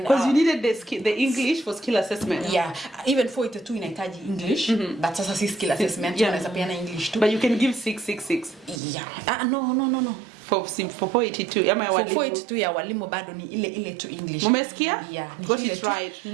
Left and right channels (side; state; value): left; drops out; at 8.8 s